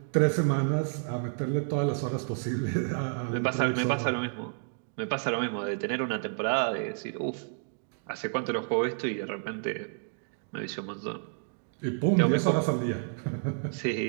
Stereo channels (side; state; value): left; silent; digital silence